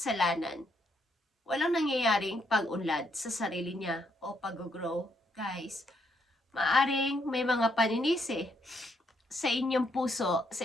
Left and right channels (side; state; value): both; normal; correlation 0.74